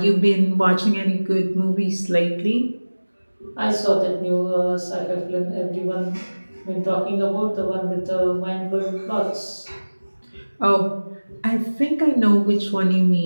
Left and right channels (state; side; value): inverted; both; correlation -1.00